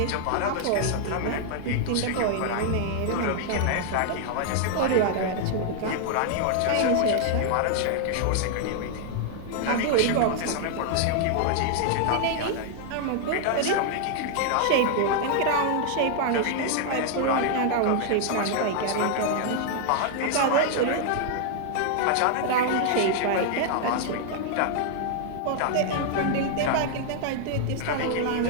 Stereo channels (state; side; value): different; both; correlation 0.00